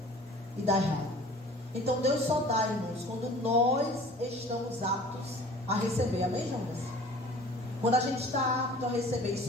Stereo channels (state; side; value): normal; both; correlation 0.46